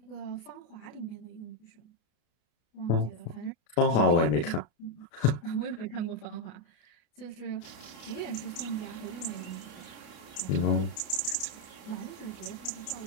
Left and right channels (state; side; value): late; right; 33 ms